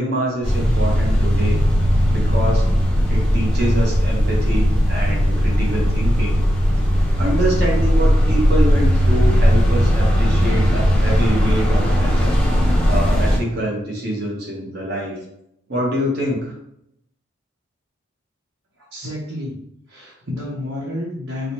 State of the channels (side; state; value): both; normal; correlation 0.88